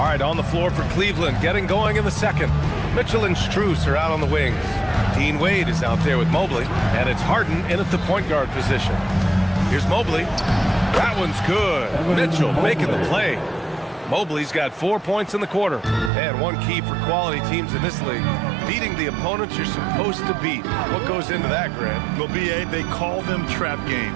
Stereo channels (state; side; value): drops out; left; at 16.1 s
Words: right, on the floor for Cleveland, getting going in the second. Mitchell and Strus are out on the wings. Dean Wade is out there with Mobley, and it's Harden in at the point guard position. Here's Mobley. That one's good. Mitchell making the play. Mobley's got 4 points in the quarter. And one key for quality teams in this league, beating the opponents you're supposed to beat. What goes into that, Grant? Well, BA, they call them trap